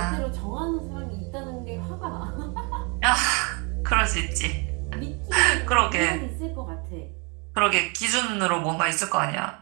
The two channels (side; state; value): left; quieter; 32.1 dB